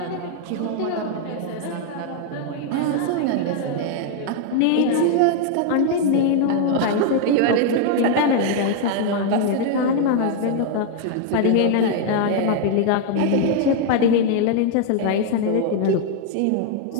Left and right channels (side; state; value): both; different; correlation 0.00